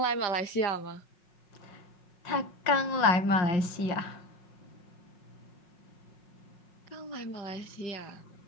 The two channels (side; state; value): right; late; 5.6 ms